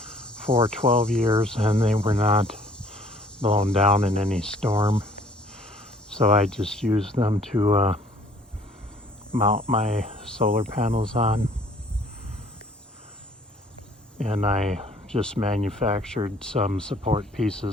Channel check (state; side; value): normal; both; correlation 0.57